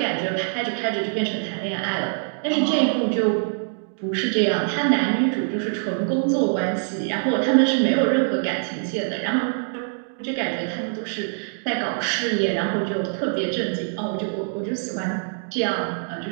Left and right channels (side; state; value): left; silent; digital silence